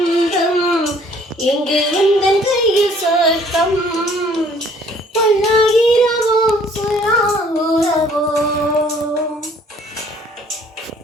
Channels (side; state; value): both; normal; correlation 0.58